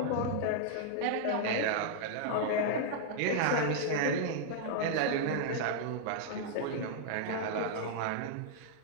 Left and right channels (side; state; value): both; different; correlation -0.01